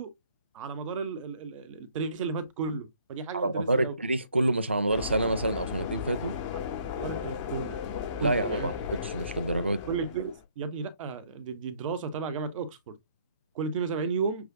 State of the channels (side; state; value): both; inverted; correlation -0.62